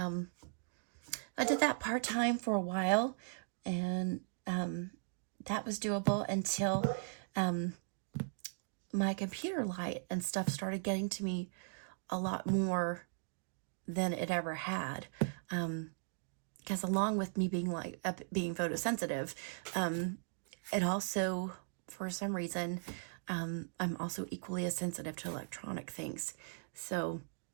did that part-time for a while, and that was doable until my computer light and stuff started getting to me a lot more than it ever had. Because along with me being photosensitive, it also, for some reason, I'm also equally as sensitive to electronic things. So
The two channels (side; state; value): left; silent; digital silence